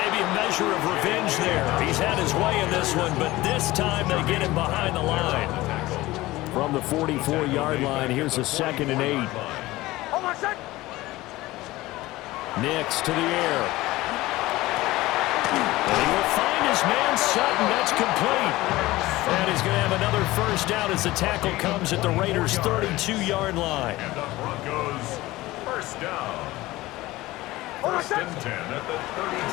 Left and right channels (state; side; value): quieter; right; 18.4 dB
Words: a measure of revenge there. He's had his way in this one, but this time they get him behind the line. From the 44-yard line, here's a 2nd and 8. Nix to the air. And he will find his man Sutton. That's complete. And he's going to have another 1st down as the tackle comes at the Raiders' 32-yard line. And the Broncos 1st down. First and 10 at the